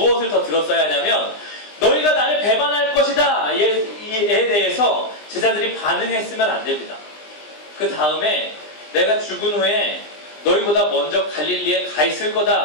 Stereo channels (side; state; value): right; late; 20 ms